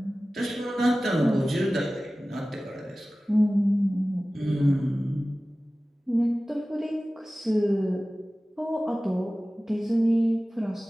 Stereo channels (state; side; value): normal; both; correlation 0.97